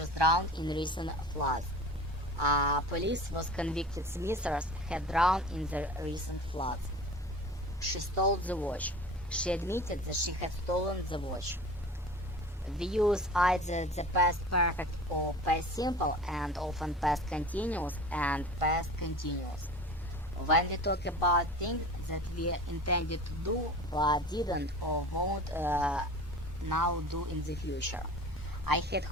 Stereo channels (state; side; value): normal; both; correlation 0.38